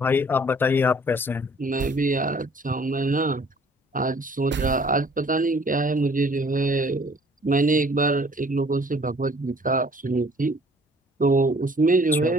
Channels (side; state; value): both; normal; correlation 0.56